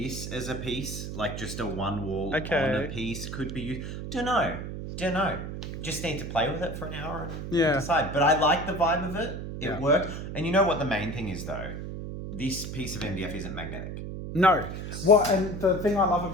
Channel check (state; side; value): noise; right; hum, 7 dB below the sound